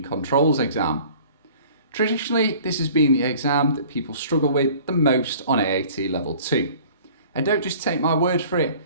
Controls exam. Traditionally, this has been the exam that people struggle with the most on AAT Level 2. And don't just take my word for it,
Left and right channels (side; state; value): both; inverted; correlation -0.49